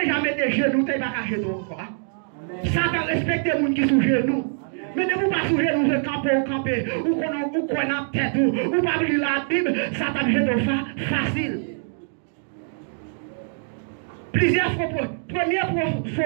mettre des genoux, tu pas qu'à jeter encore. Satan respecte les gens qui sont genoux. Mais ne vous pas sous genoux, vous camper, ou qu'on a tête, ou pas lire la Bible, Satan jette facile. Plusieurs fois, premier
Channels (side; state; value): left; silent; digital silence